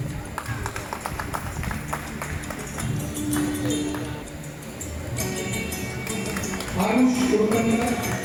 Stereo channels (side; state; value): both; identical; correlation 1.00